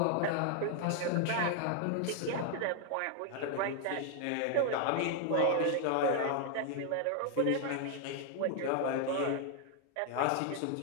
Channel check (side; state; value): both; different; correlation 0.00